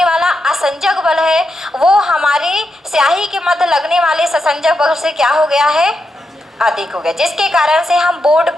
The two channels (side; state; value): both; normal; correlation 0.85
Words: वाला असंजक बल है वो हमारे स्याही के मध्य लगने वाले ससंजक बल से क्या हो गया है? अधिक हो गया, जिसके कारण से हम बोर्ड